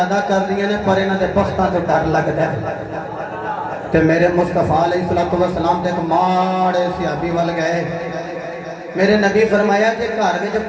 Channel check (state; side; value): identical; both; correlation 1.00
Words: کردیاں نے پر انہاں دے بختاں تو ڈر لگدا ہے تے میرے مصطفیٰ علیہ السلام تے ایک ماڑے صحابی ول گئے میرے نبی فرمایا کہ گھر وچ